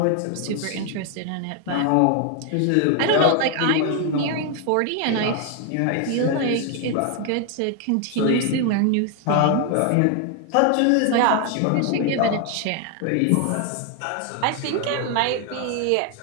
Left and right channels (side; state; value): both; different; correlation 0.01